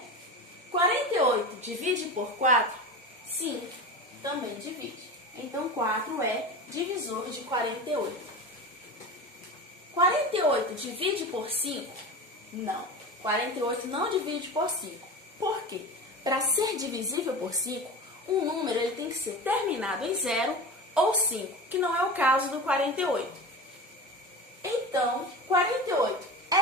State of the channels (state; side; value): normal; both; correlation 0.29